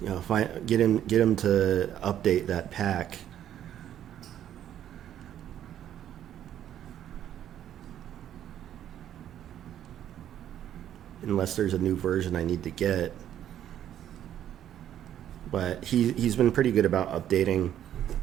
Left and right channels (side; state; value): left; quieter; 10.8 dB